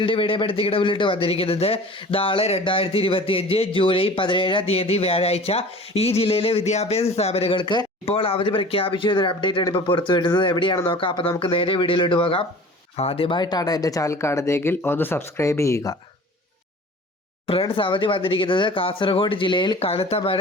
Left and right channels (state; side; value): normal; both; correlation 0.42